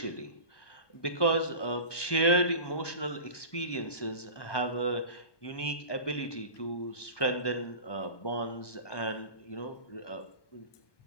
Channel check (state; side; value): late; right; 1.2 ms